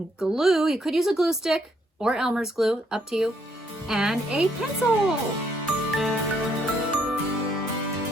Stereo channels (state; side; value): normal; both; correlation 0.71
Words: glue. You could use a glue stick or Elmer's glue, up to you, and a pencil.